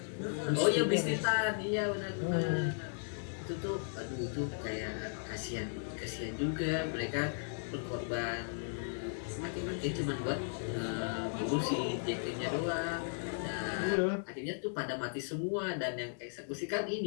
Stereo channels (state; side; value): silent; right; digital silence